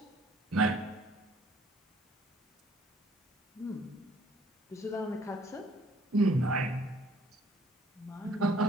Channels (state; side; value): normal; both; correlation 0.59